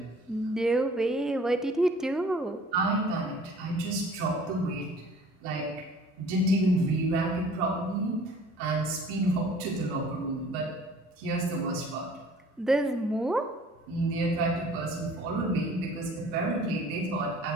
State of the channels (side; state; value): both; normal; correlation 0.51